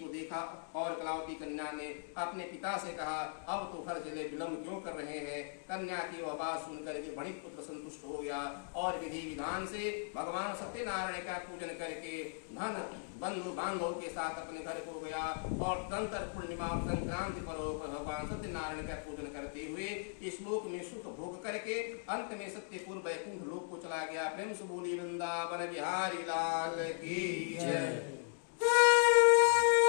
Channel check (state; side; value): silent; right; digital silence